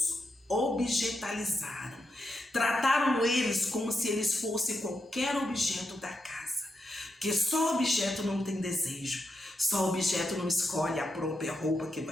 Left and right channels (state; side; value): normal; both; correlation 0.84